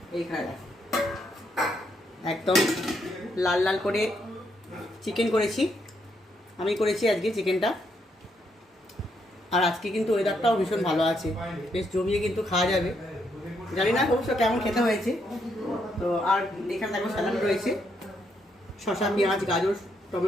এইখানে একদম লাল লাল করে চিকেন করেছি, আমি করেছি আজকে চিকেনটা। আর আজকে কিন্তু ওয়েদারটাও ভীষণ ভালো আছে, বেশ জমিয়ে কিন্তু খাওয়া যাবে। জানি না অবশ্য কেমন খেতে হয়েছে। তো আর এখানে দেখো স্যালাড রয়েছে, শসা পেঁয়াজ গাজর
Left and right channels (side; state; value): both; normal; correlation 0.76